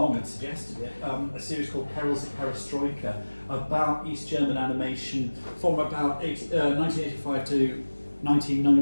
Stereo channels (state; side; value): inverted; both; correlation -1.00